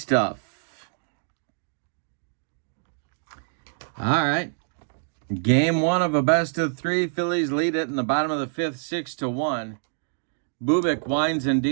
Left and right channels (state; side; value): silent; left; digital silence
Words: All right. Game 1 of a best-of-3. Phillies lead it in the bottom of the 5th, 6-1. Bubic winds and